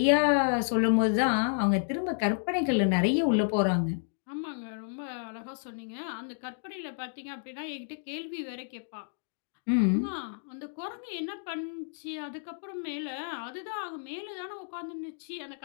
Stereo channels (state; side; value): silent; right; digital silence